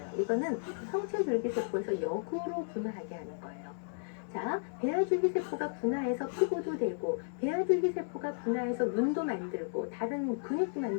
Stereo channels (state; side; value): silent; right; 55 dB below the other